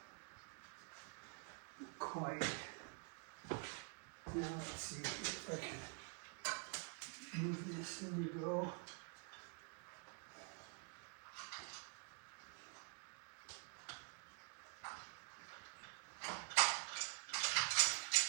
Quite. Now let's see if I can move this. There we go.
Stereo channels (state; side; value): quieter; left; 36.3 dB